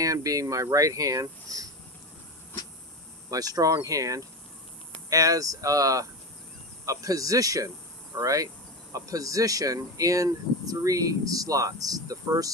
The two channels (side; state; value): both; normal; correlation 0.21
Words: being my right hand, my strong hand, as a position, all right? A position in 3 slots, the first,